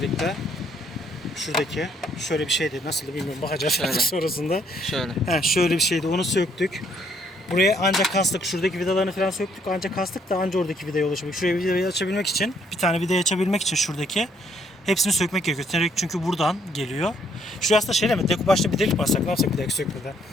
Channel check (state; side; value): normal; both; correlation 0.67